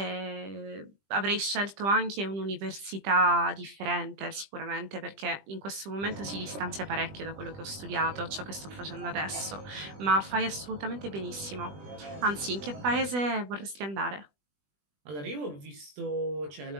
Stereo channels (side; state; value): left; late; 20 ms